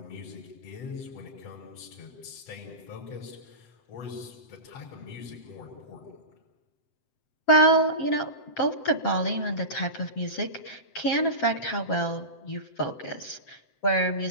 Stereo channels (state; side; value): late; right; 7.8 ms